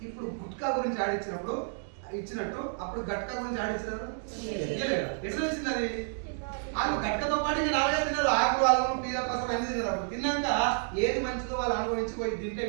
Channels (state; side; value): silent; left; 58 dB below the other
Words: ఇప్పుడు గుట్కా గురించి ఆడిచ్చినప్పుడు ఇచ్చినట్టు అప్పుడు గట్కా గురించి ఆడిచ్చినారు ఎట్లా వచ్చింది అది? వాళ్ళు గట్కతో పాటు ఇంకా నాలుగే తిన్నారు, ఆకులు వాళ్ళు పీల కోసం అన్ని తిన్నారు. అప్పుడు తిన్నాక ఏది మంచిదో వాళ్ళు అనుభవించుకోయి తింటే